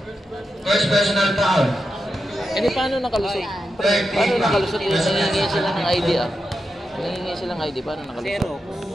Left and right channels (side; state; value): both; normal; correlation 0.88